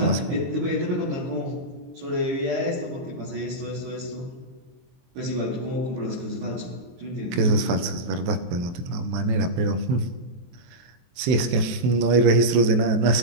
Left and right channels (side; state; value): left; late; 23 ms